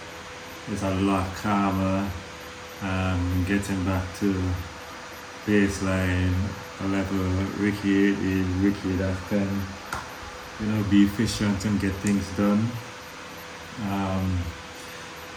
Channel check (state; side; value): identical; both; correlation 1.00